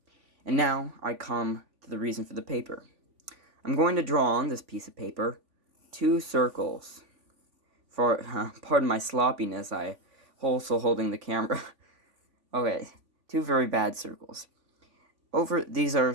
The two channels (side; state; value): left; late; 3.5 ms